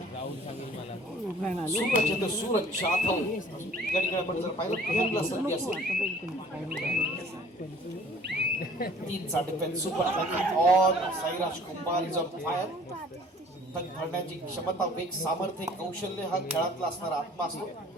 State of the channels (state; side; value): normal; both; correlation 0.52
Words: सूरज येतो, सूरज जाधव या ठिकाणी आपण जर पाहिलं पहिल्यांदा संधी असेल 3चा defence super attack on Sairaj Kumbhar is on fire. धरण्याची क्षमता, वेग, सामर्थ्य, कौशल्य हा खेळातला असणारा आत्मा असतो.